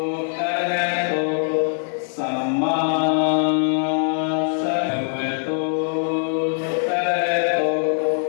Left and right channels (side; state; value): right; silent; 58 dB below the other